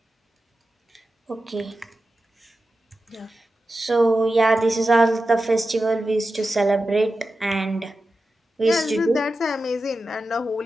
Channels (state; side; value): normal; both; correlation 0.92